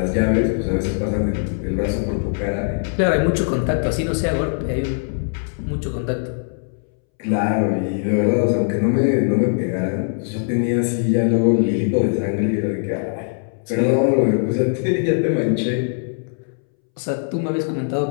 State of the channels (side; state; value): right; silent; 64 dB below the other